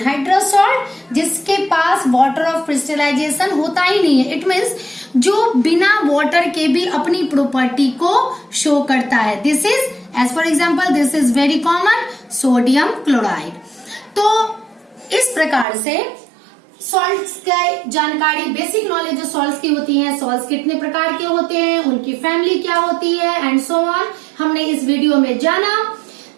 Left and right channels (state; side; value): drops out; left; at 15.7 s